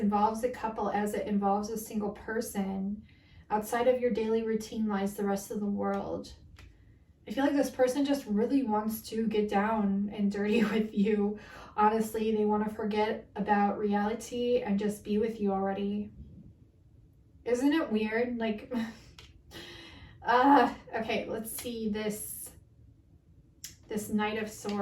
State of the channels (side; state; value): both; identical; correlation 1.00